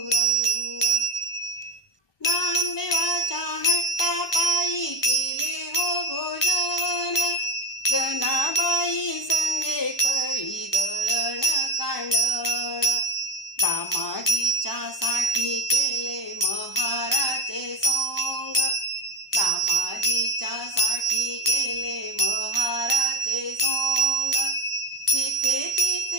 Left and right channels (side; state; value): right; late; 1.2 ms